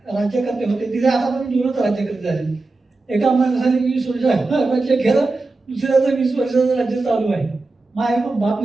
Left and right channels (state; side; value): quieter; left; 3.4 dB